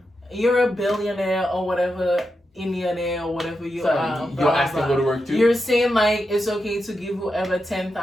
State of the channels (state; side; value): normal; both; correlation 0.87